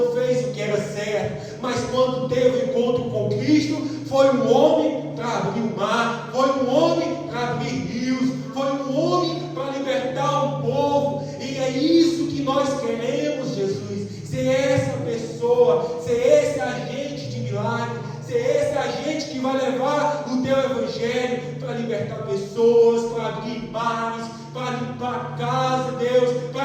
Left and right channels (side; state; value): both; identical; correlation 1.00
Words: fez o que era certo, mas quando teve um encontro com Cristo, foi um homem para abrir o mar, foi um homem para abrir rios, foi um homem para libertar o povo, e é isso que nós queremos, Jesus, ser essa pessoa, ser esse agente de milagre, ser esse agente que vai levar o teu evangelho para libertar pessoas, para abrir mares, para limpar a casa, Deus, para